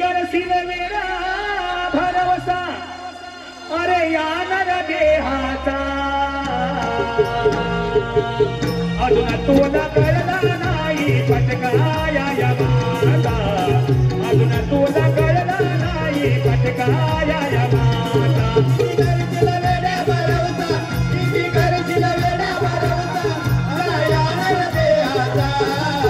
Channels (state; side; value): identical; both; correlation 1.00